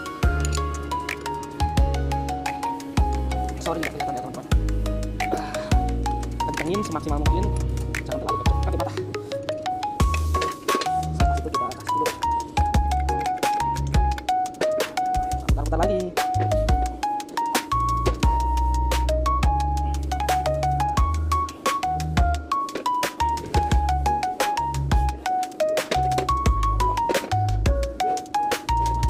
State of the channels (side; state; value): both; identical; correlation 1.00